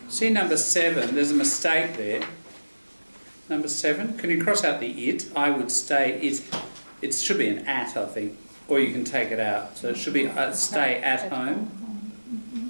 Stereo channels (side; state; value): both; inverted; correlation -1.00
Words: See number 7, there's a mistake there. Number 7, can you cross out the it? I would stay it. It should be an at, I think. Or you can take it out. So it should be stay at home,